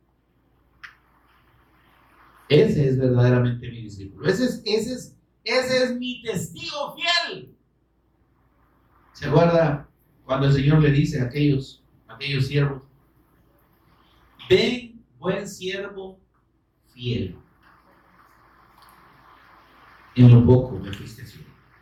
ese es verdaderamente mi discípulo. Ese es mi testigo fiel. ¿Se acuerda cuando el Señor le dice a aquellos siervos, ven, buen siervo fiel, en lo poco me fuiste fiel?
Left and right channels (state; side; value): identical; both; correlation 1.00